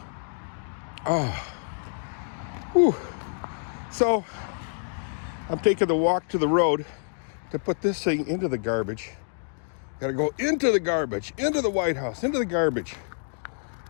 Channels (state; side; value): silent; right; 60 dB below the other